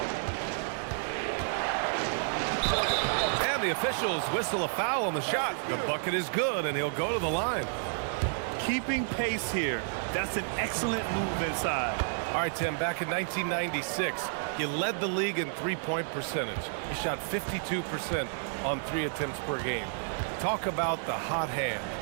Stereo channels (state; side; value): silent; left; digital silence